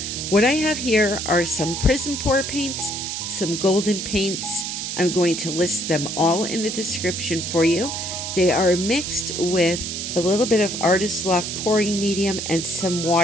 I have here are some Prizm pour paints, some golden paints. I'm going to list them all in the description for you. They are mixed with a little bit of Artist Loft pouring medium and some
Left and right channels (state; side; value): noise; right; hiss, 4 dB below the sound